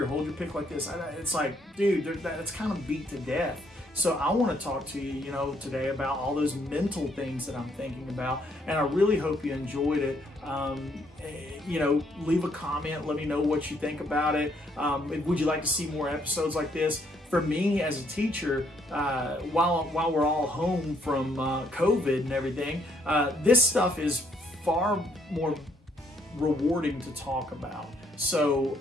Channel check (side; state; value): both; normal; correlation 0.70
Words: hold your pick like this. It's like, dude, that's kind of beat to death. So I want to talk to you, today about all those mental things that I'm thinking about, and I really hope you enjoyed it. Leave a comment, let me know what you think about it. Would you like to see more episodes like this? For me as a teacher, while we're all home from COVID and everything, this stuff is far more rewarding to talk about. So,